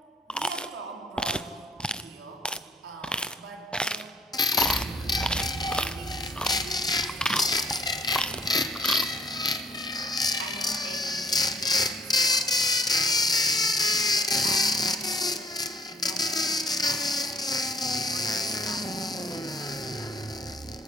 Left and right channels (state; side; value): normal; both; correlation 0.59